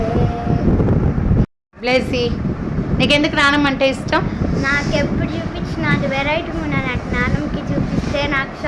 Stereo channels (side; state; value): both; identical; correlation 1.00